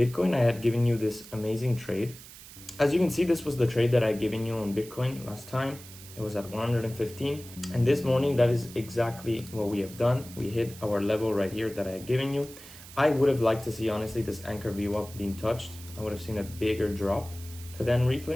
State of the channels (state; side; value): noise; right; hiss, 17 dB below the sound